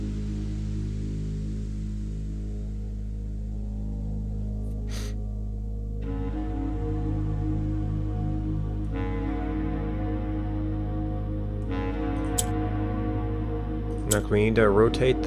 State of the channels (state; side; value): identical; both; correlation 1.00